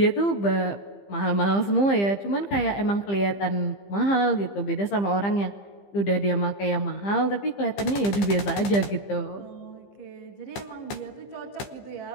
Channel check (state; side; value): late; right; 15 ms